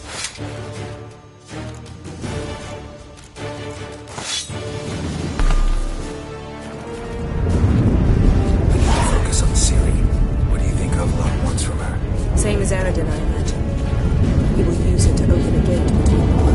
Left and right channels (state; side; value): identical; both; correlation 1.00